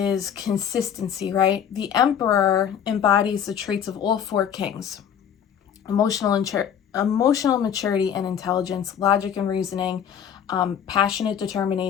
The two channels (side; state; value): right; quieter; 8.6 dB